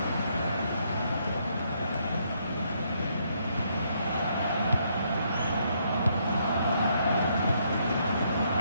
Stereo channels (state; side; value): inverted; both; correlation -0.73